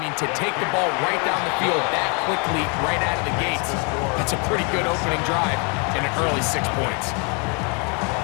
to take the ball right down the field that quickly, right out of the gates, that's a pretty good opening drive and an early 6 points.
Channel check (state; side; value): quieter; right; 34.5 dB